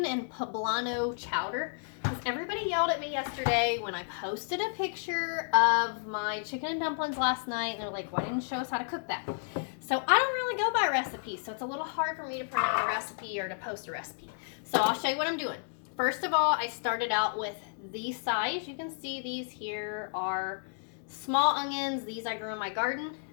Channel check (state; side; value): silent; right; digital silence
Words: and poblano chowder. Because everybody yelled at me yesterday when I posted a picture of my chicken and dumplings last night. And they're like, why didn't you show us how to cook that? So I don't really go by recipes. So it's a little hard for me to print out a recipe or to post a recipe. So I'll show you what I'm doing. First of all, I started out with these size. You can see these here are small onions. These I grew in my garden.